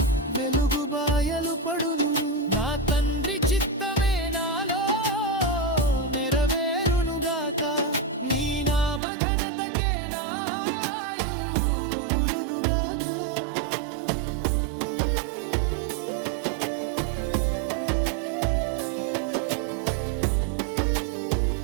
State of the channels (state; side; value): drops out; left; at 9.0 s